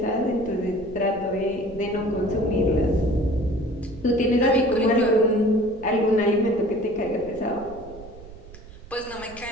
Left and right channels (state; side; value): noise; right; rumble, 18 dB below the sound